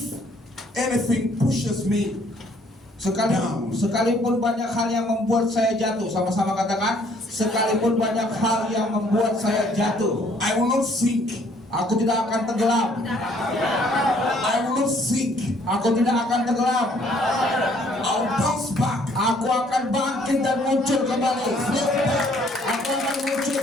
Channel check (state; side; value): normal; both; correlation 0.62